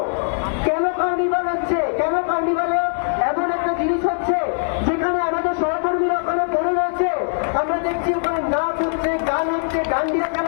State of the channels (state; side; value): silent; right; digital silence